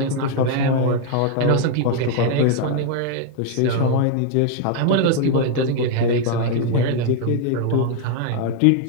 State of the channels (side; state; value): both; different; correlation 0.00